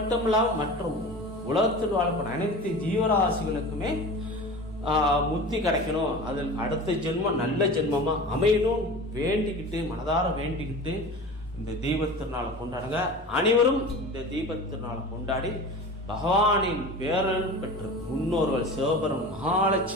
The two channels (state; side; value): normal; both; correlation 0.35